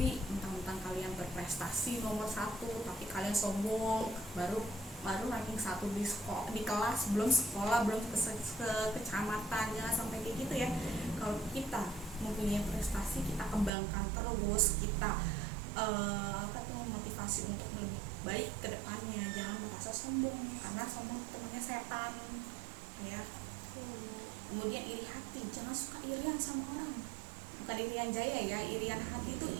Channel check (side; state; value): left; drops out; at 13.7 s